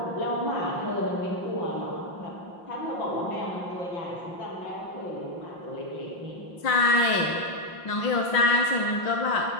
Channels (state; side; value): late; right; 5.7 ms